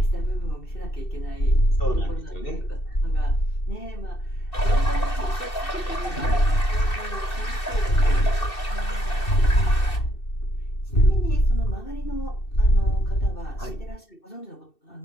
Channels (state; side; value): late; right; 2.7 ms